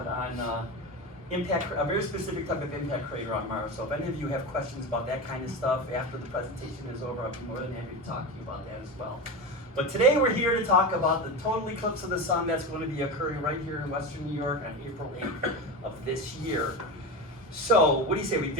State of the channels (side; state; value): both; normal; correlation 0.22